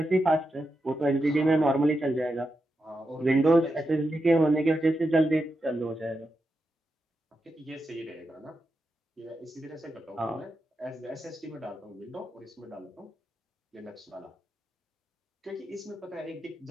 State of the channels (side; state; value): both; normal; correlation 0.87